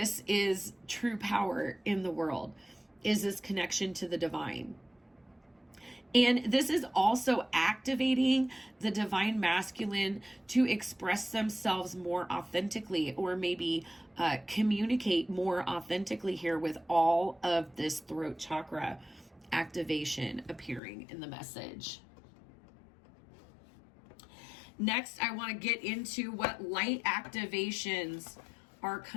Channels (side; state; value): right; drops out; at 20.8 s